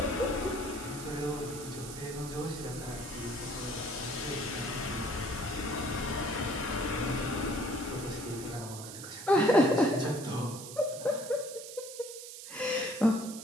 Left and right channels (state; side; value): noise; right; hiss, 11 dB below the sound